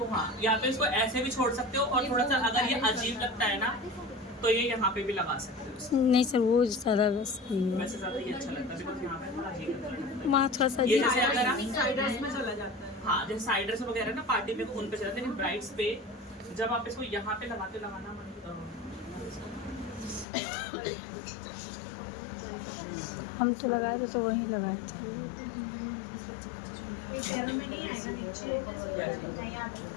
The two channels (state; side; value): drops out; right; at 20.2 s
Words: हाँ, या तो इसको ऐसे भी छोड़ सकते हो, और थोड़ा सा अगर ये अजीब लगता है ना, तो ये यहाँ पे भी लगा सकते हो। नहीं सर वो ज़्यादा बस सही है, वैसे ज़्यादा ये अच्छा लगता है, बिकॉज़ यहाँ पे थोड़ा अजीब लगता है। वहाँ थोड़ा सा ये जैसे अगर आप साइडर्स में चला जाता है। हाँ, जैसे साइडर्स वगैरह ना पार्टी में उन पे चलाते हैं, लेकिन ब्राइड्स पे जब आप इसको यहाँ पे लगाना हम तो लगाए थे, तो वहीं लगाए थे। पैरों में नहीं आएगा नीचे, नहीं